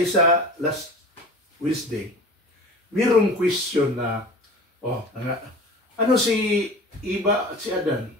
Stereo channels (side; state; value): both; normal; correlation 0.38